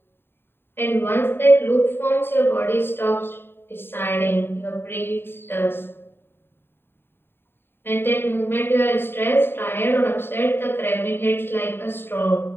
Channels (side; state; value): right; late; 0.11 ms